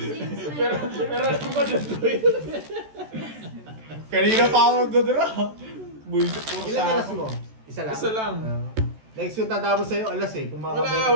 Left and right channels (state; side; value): late; left; 14 ms